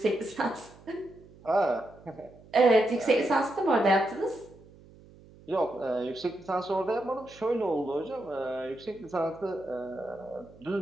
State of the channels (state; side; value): noise; right; hum, 23 dB below the sound